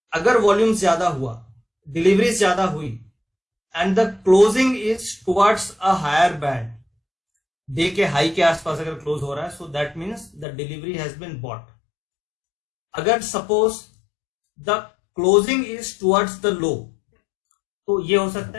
अगर वॉल्यूम ज्यादा हुआ, डिलीवरी ज्यादा हुई and the closing is towards a higher band, day के हाई के आसपास अगर क्लोज हो रहा है, so that means the delivery has been bought. अगर suppose the closing is towards the low, तो ये हो सकता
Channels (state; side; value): drops out; right; at 10.5 s